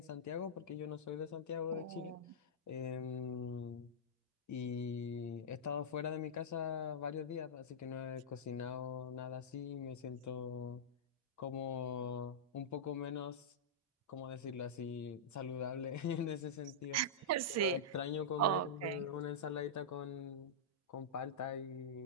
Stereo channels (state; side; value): normal; both; correlation -0.12